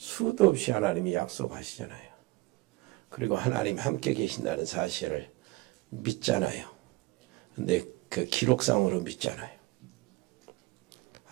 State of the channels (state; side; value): quieter; left; 21.7 dB